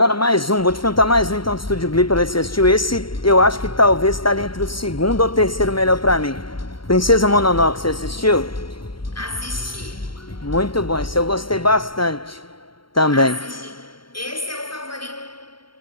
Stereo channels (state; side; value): late; right; 0.73 ms